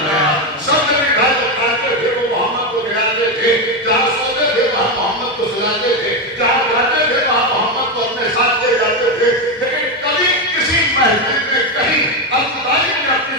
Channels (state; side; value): normal; both; correlation 0.10